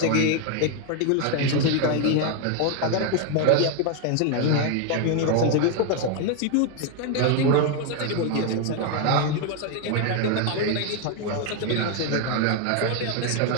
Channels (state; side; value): different; both; correlation 0.01